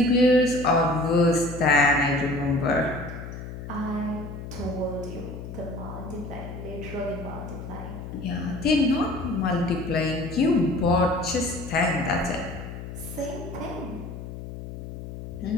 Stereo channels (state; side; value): noise; left; hum, 10 dB below the sound